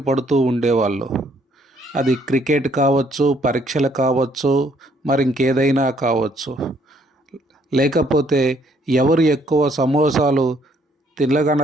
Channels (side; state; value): both; normal; correlation 0.66